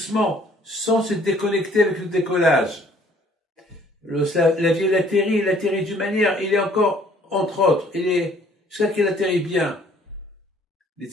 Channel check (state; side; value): normal; both; correlation 0.59